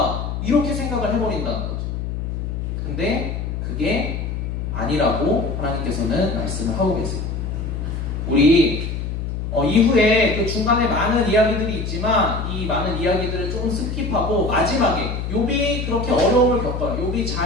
이렇게 생각을 해버린다는 거죠. 근데 그게 아니라고 하나님께서는 말씀을 하고 계세요. 우리 이후에 그 중간에 많은 이야기들이 있지만 이 많은 이야기들을 조금 스킵하고 마지막에 욥이 그렇게 어려움을 겪어요. 욥이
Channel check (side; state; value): left; noise; hum, 4 dB below the sound